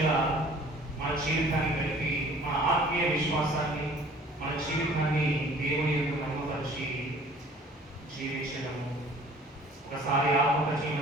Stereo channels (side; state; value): both; normal; correlation 0.51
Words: మన జీవితాన్ని కలిపి మన ఆత్మీయ విశ్వాసాన్ని, మన జీవితాన్ని దేవుని యొక్క నమ్మపరిచి జీవించడము. ఒకసారి